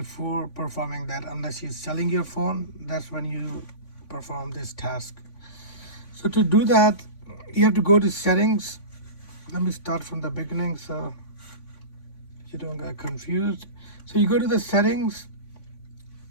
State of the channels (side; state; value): right; late; 3.5 ms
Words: performing that. Unless you're selling your phone, that's when you perform this task. So to do that, you have to go to settings. Let me start from the beginning so you don't get confused. So you go to the settings